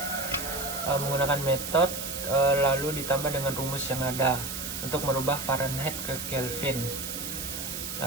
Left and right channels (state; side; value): noise; right; hiss, 6 dB below the sound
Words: menggunakan metode lalu ditambah dengan rumus yang ada untuk merubah Fahrenheit ke Kelvin.